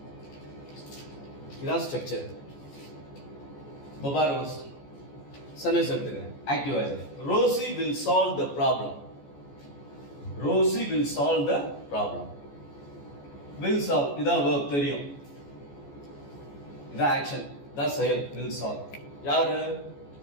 இதான் ஸ்ட்ரக்சர். பாரு சென்டென்ஸ் எடுத்துக்கிறேன். Active voice Rosy will solve the problem. Rosy will solve the problem. will solve இதான் verb தெரியும், இதான் ஆக்ஷன், இதான் செயல். will solve யாரு?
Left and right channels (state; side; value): late; right; 14 ms